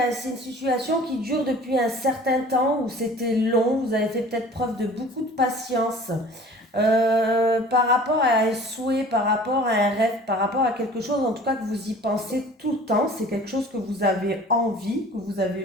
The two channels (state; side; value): normal; both; correlation 0.46